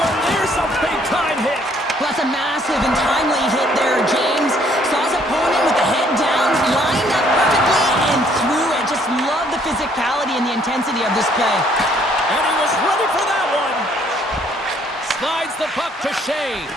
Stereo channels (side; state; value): both; normal; correlation 0.64